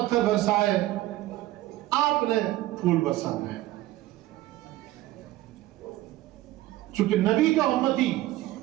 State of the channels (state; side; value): quieter; left; 16.1 dB